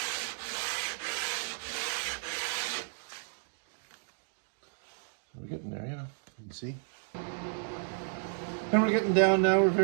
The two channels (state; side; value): silent; left; digital silence